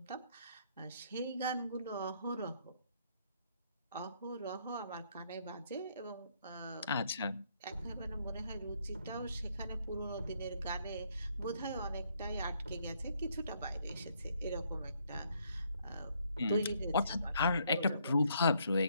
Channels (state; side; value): inverted; both; correlation -0.70